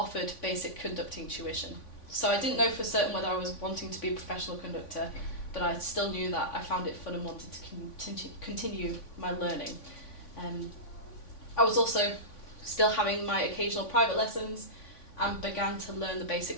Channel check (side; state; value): right; late; 3.5 ms